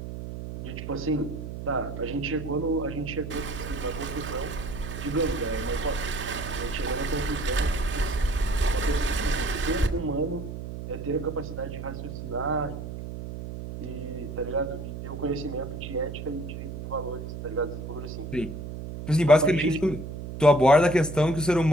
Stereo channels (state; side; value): noise; right; hum, 8 dB below the sound